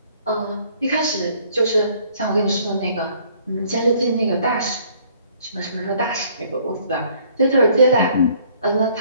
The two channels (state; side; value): inverted; both; correlation -0.60